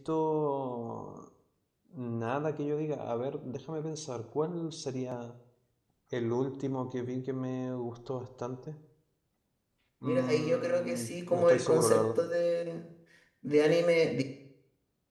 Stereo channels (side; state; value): both; identical; correlation 1.00